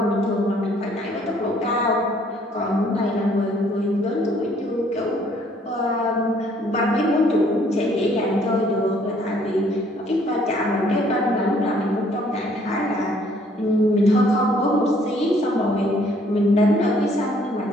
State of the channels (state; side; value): normal; both; correlation 0.62